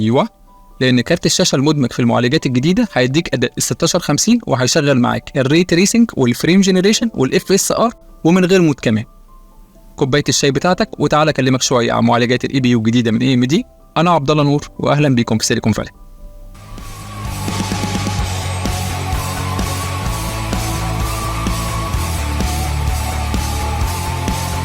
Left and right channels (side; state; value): both; identical; correlation 1.00